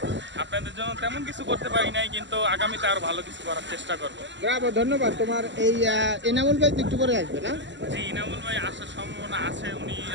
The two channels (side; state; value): left; late; 0.53 ms